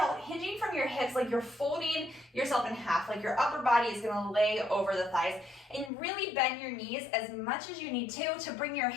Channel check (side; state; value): right; drops out; at 5.9 s